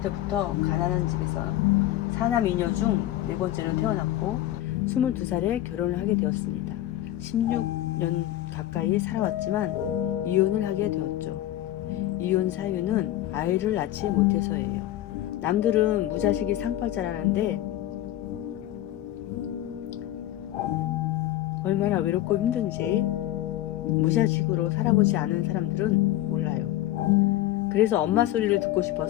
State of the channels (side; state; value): right; quieter; 14.0 dB